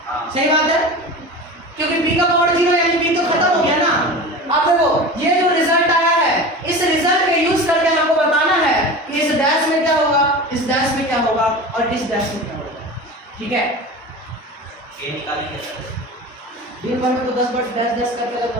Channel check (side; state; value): both; normal; correlation 0.32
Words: सही बात है, क्योंकि बी का पावर 0, यानी बी तो खत्म हो गया ना। अब देखो ये जो रिजल्ट आया है, इस रिजल्ट का यूज करके हमको बताना है कि इस डैश में क्या होगा, इस डैश में क्या होगा और इस डैश में क्या होगा, ठीक है। ये निकालेंगे सर, दिन भर में तो 10 बार डैश डैश करके